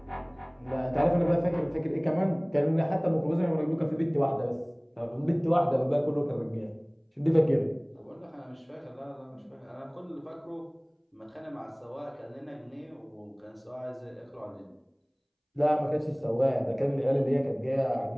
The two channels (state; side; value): identical; both; correlation 1.00